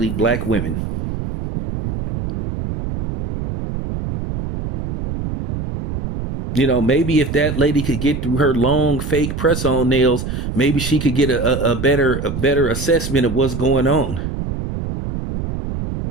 black women. Maybe if that lady could get through her long fake press-on nails, maybe she could get a better assessment of what's going on.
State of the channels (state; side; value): noise; right; rumble, 5 dB below the sound